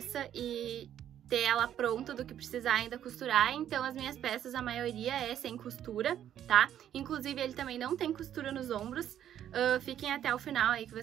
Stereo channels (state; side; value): quieter; left; 10.6 dB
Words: e ter ela pronta do que precisar ainda costurar. Então as minhas peças, a maioria é sem costura, tá? Inclusive ele também não tem costura nos ombros. Fiquem até o final aí que